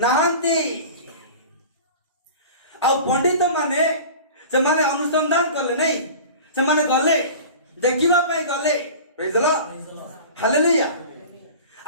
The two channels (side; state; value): both; inverted; correlation -0.38